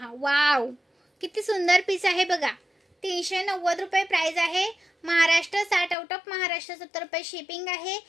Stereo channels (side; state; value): right; drops out; at 6.0 s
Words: वाव किती सुंदर पीस आहे बघा। 390 रुपये प्राइस आहे। महाराष्ट्र 60 आउट ऑफ महाराष्ट्र 70 रुपये शिपिंग आहे।